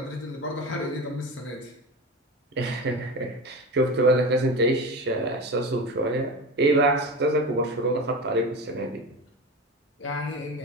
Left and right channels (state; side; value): normal; both; correlation 0.26